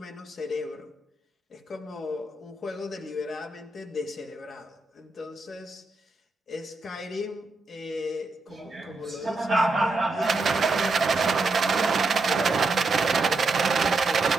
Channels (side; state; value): left; quieter; 3.3 dB